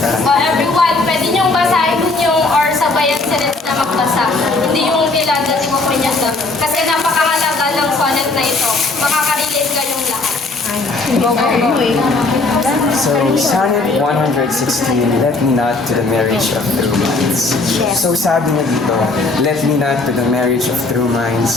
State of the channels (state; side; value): quieter; right; 3.4 dB